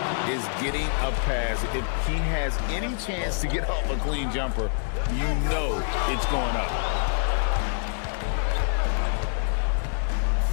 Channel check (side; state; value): right; silent; digital silence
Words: is getting a pass, if he has any chance to get off a clean jumper, you know it's going up.